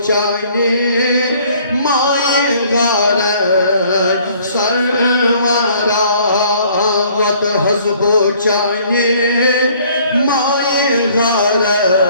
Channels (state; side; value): inverted; both; correlation -0.58